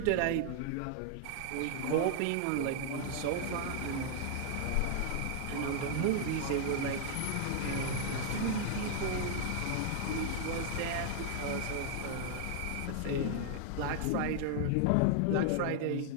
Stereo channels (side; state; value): both; different; correlation 0.00